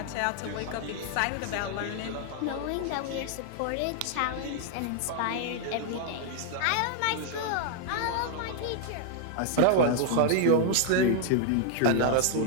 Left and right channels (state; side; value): different; both; correlation 0.00